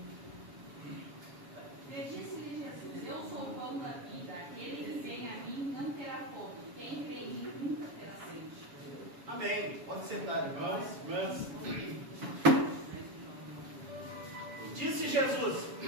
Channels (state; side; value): late; left; 7.1 ms